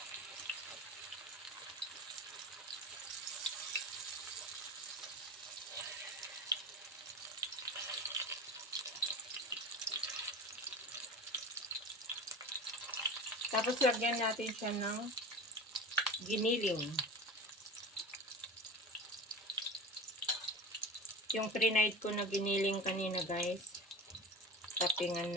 Tapos lagyan natin siya ng giniling. Yung pre-night ko na giniling kanina guys. Toppingan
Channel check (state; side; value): normal; both; correlation 0.32